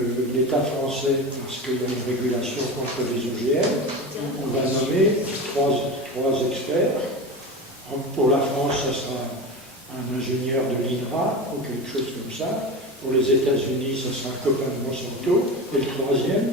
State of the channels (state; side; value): normal; both; correlation 0.26